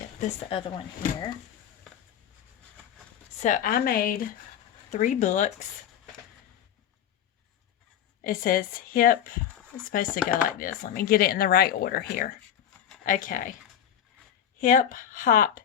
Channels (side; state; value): right; quieter; 9.7 dB